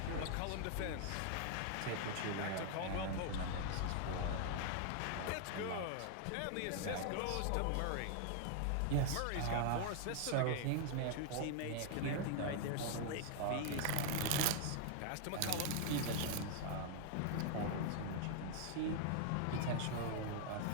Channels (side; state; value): both; different; correlation 0.00